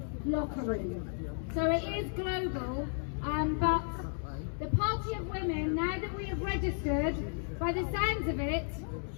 locker room. So it is global, but the Party of Women, now that we have registered, by the sounds of it,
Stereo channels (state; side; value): silent; right; 55 dB below the other